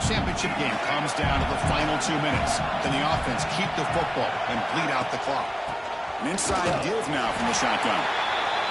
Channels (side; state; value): both; identical; correlation 1.00